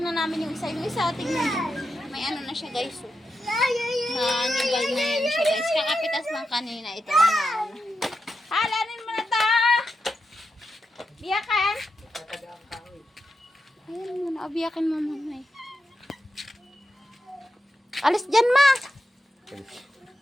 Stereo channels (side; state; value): both; normal; correlation 0.87